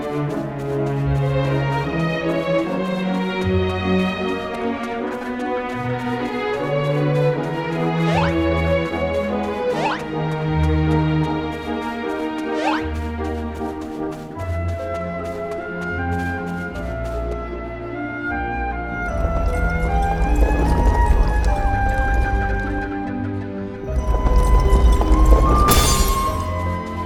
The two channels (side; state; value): both; identical; correlation 1.00